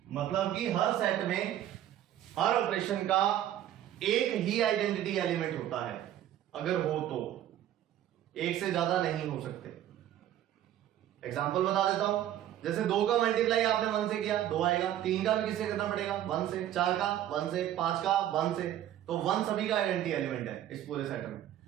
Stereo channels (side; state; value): left; quieter; 12.0 dB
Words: मतलब कि हर सेट में हर ऑपरेशन का एक ही आइडेंटिटी एलिमेंट होता है, अगर हो तो, एक से ज्यादा नहीं हो सकते। एग्जांपल बता देता हूं, जैसे 2 का मल्टीप्लाई आपने 1 से किया 2 आएगा, 3 का भी किससे करना पड़ेगा 1 से, 4 का 1 से, 5 का 1 से, तो 1 सभी का आइडेंटिटी एलिमेंट है इस पूरे सेट में।